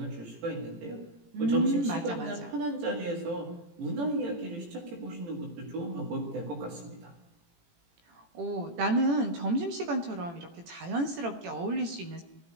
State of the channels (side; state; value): left; late; 18 ms